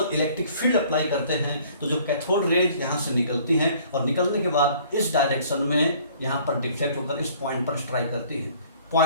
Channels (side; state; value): both; inverted; correlation -0.55